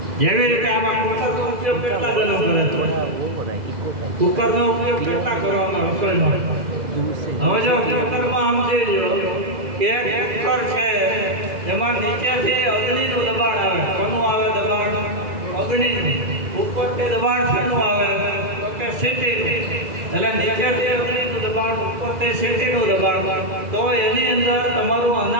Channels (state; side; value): late; left; 2.0 ms